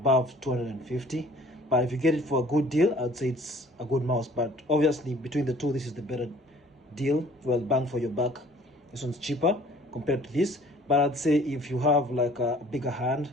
250, but if you get it for a good deal, I'd say it's a good mouse. But obviously, between the two, this is the better deal. Well, bang for your buck. This one's cheaper compared to this. But I'd say, if you have like a bigger hand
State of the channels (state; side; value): normal; both; correlation 0.53